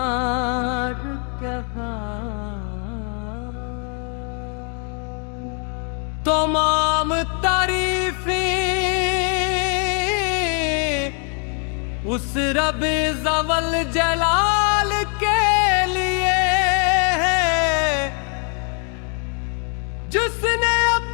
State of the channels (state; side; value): quieter; right; 39.2 dB